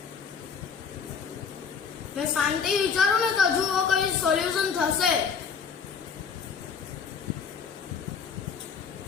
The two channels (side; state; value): right; quieter; 6.3 dB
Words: મેં શાંતિ વિચારું ને તો હજુ કઈ સોલ્યુશન થશે.